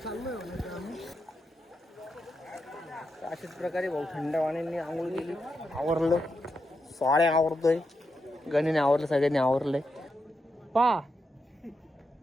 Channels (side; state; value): both; normal; correlation 0.85